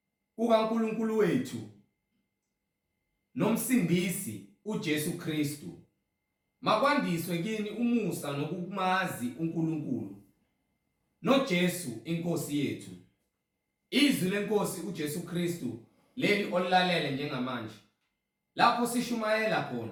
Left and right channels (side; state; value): both; identical; correlation 1.00